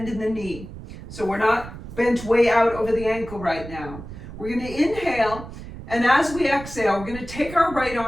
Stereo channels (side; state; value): right; noise; rumble, 13 dB below the sound